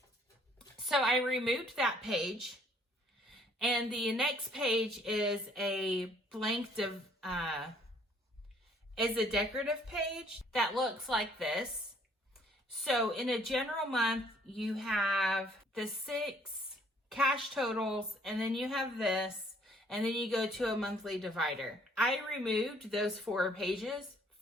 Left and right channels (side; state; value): both; normal; correlation 0.62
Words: So I removed that page, and the next page is a blank is a decorative page that looks like this. So in a general month, you have the 6 cash totals, and then you have this, and then you go to a monthly divider. I removed those 4 pages